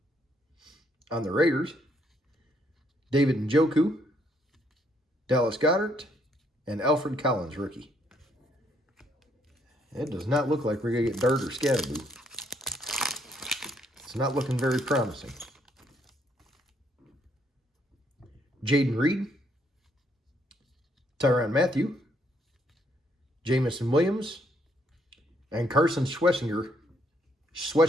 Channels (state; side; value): normal; both; correlation 0.71